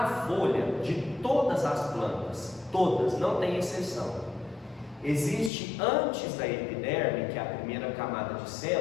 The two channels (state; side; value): drops out; right; at 5.5 s